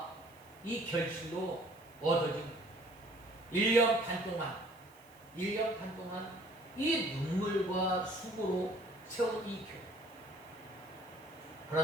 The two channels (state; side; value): noise; right; hiss, 27 dB below the sound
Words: 이 결실로 얻어진 1년 반 동안 이 눈물과 수고로 세운 이 교회.